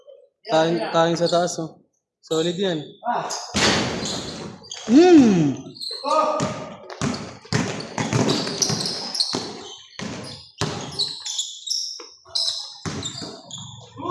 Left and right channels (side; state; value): both; identical; correlation 1.00